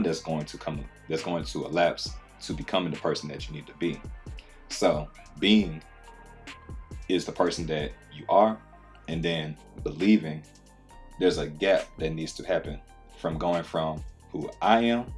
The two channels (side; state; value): both; identical; correlation 1.00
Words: that's going to elapse to becoming the person that you need to be. So being is the person that you are, and then believing, there's a gap that needs to happen from going from who I am